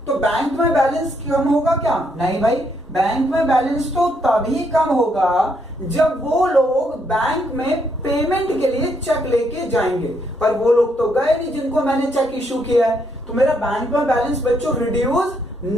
तो बैंक में बैलेंस कम होगा क्या? नहीं भाई, बैंक में बैलेंस तो तभी कम होगा जब वो लोग बैंक में पेमेंट के लिए चेक लेके जाएंगे। पर वो लोग तो गए नहीं जिनको मैंने चेक इशू किया है, तो मेरा बैंक में बैलेंस बच्चों रिड्यूस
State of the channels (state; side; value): normal; both; correlation 0.74